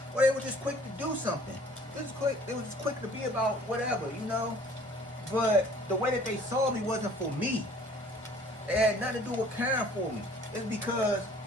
Or they were just quick to do something. They was just quick to be about whatever, But the way that they saw me wasn't for me. It had nothing to do with caring for me. It's because,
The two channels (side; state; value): both; normal; correlation 0.53